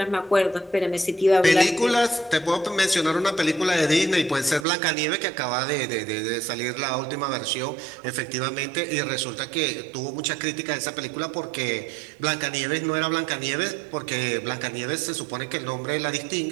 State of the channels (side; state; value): left; drops out; at 4.7 s